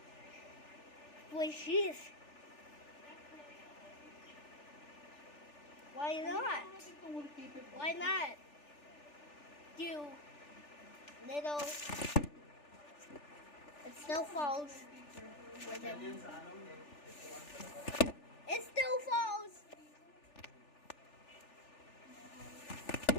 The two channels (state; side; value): late; right; 3.4 ms